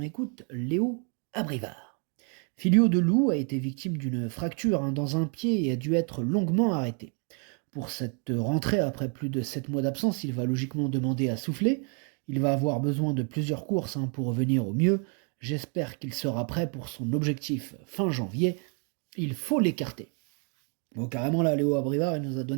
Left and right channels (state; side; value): quieter; left; 39.8 dB